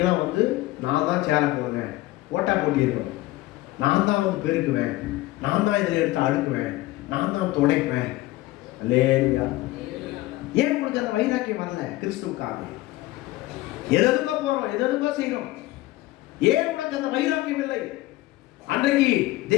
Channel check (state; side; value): quieter; right; 18.0 dB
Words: வந்து நான் தான் சேர போடுவேன், ஓட்டா போட்டி இருக்கும், நான் தான் வந்து பெருக்குவேன், நான் தான் இதில் எடுத்து அடுக்குவேன், நான் தான் துடைப்பேன். அல்லேலூயா. ஏன் உங்களுக்கு அந்த வைராக்கியம் வரல? கிறிஸ்துவுக்காக எதுக்கோ போறோம், எதுக்கோ செய்யறோம். ஏன் உனக்கு அந்த வைராக்கியம் இல்லை? அன்றைக்கு